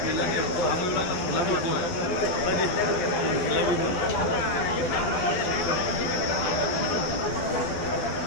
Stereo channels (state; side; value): late; right; 12 ms